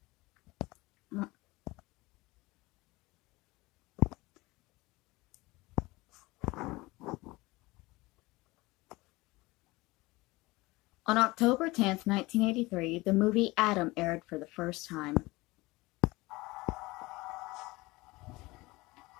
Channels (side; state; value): right; quieter; 21.7 dB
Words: On October 10th, 1983, the movie Adam aired for the first time.